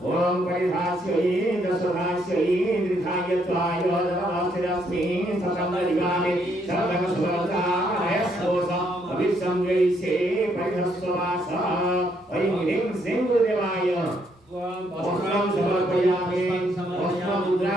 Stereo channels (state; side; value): normal; both; correlation 0.72